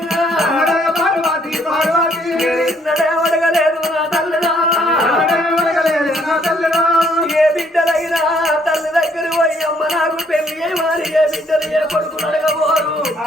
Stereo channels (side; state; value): both; normal; correlation 0.67